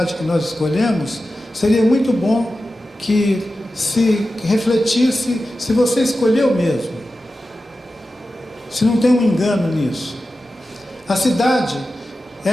que nós escolhemos, seria muito bom que se refletisse se você escolheu mesmo, se não tem um engano nisso. A cidade,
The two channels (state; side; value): normal; both; correlation 0.93